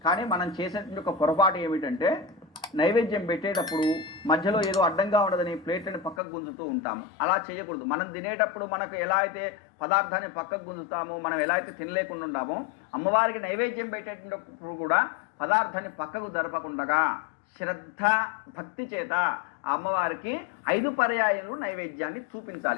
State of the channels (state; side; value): drops out; right; at 6.2 s